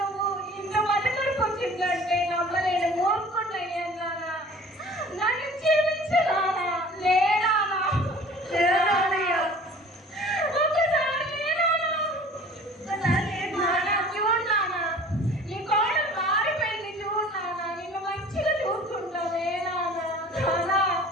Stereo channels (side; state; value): both; normal; correlation 0.46